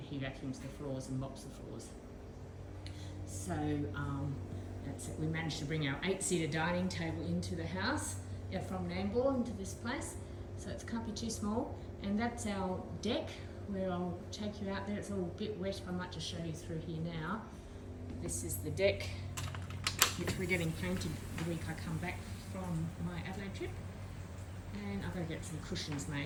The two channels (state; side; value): identical; both; correlation 1.00